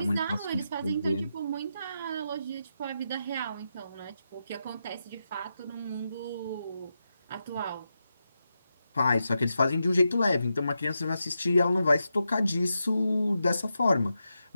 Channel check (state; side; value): inverted; both; correlation -0.87